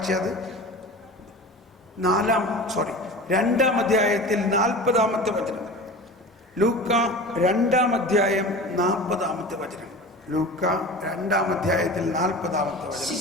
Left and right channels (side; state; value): both; normal; correlation 0.35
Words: 2-ാം അധ്യായത്തിൽ 40-ാമത്തെ വചനം. ലൂക്ക 2-ാം അധ്യായം 40-ാമത്തെ വചനം. ലൂക്ക 2-ാം അധ്യായത്തിൽ 40-ാമത്തെ വചനം.